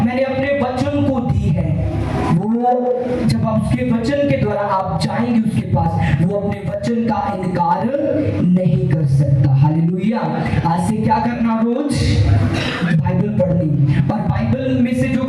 मैंने अपने वचन को दी है। वो जब आप उसके वचन के द्वारा आप जाएंगे उसके पास, वो अपने वचन का इनकार नहीं कर सकता। हालेलुया। आज से क्या करना, रोज बाइबल पढ़नी, और बाइबल में से जो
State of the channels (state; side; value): identical; both; correlation 1.00